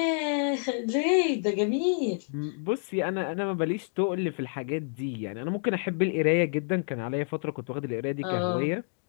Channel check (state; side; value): silent; right; digital silence